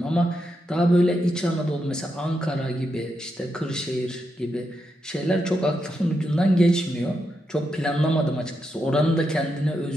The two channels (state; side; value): normal; both; correlation 0.84